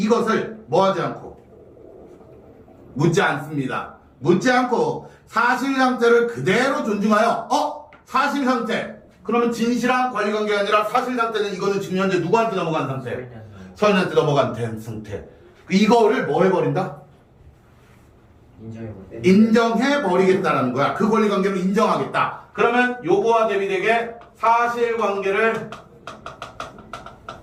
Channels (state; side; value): identical; both; correlation 1.00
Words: 뭐 하지 않고 묻지 않습니다. 묻지 않고 사실 상태를 그대로 존중하여 사실 상태, 그러면 진실한 권리관계가 아니라 사실 상태는 이거는 지금 현재 누구한테 넘어간 상태? 서현한테 넘어간 상태. 이거를 뭐 해버린다? 인정해버리겠다라는 거야. 그 권리관계를 인정하겠다. 그러면 요거와 대비되게 사실관계를